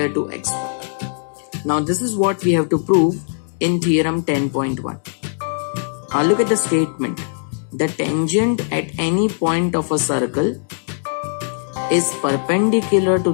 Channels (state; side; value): silent; right; digital silence